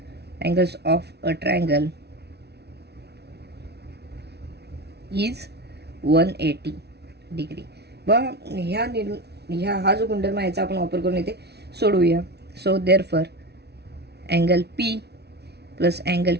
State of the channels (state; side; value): late; left; 0.49 ms